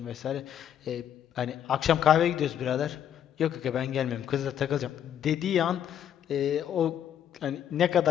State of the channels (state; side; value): quieter; right; 9.8 dB